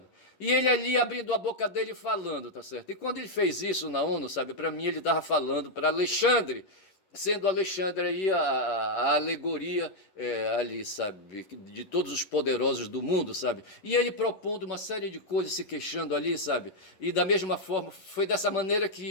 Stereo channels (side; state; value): right; late; 11 ms